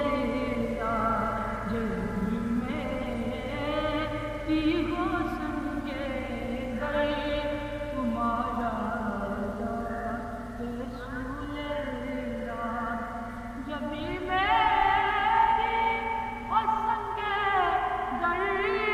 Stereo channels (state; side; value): identical; both; correlation 1.00